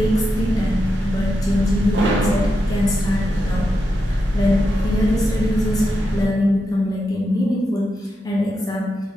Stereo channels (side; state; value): both; normal; correlation 0.86